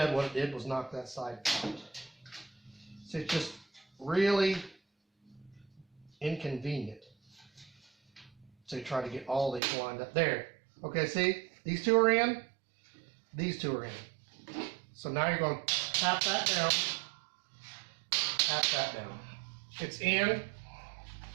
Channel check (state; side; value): drops out; left; at 9.6 s